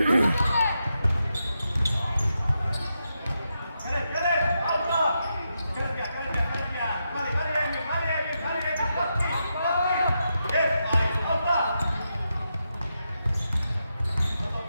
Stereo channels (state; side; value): inverted; both; correlation -0.85